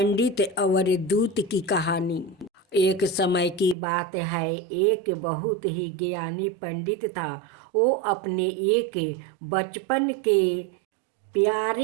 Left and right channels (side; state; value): left; drops out; at 3.8 s